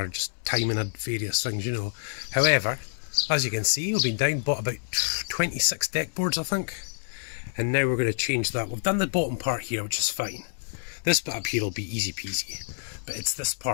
just timing and various things, you know. However, as you can see, we've been down, bought about 26 deck boards, I think. And now we're going to change that. We've done the bottom part here, which is fine. This bit up here will be easy peasy. But it's this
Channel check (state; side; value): silent; right; digital silence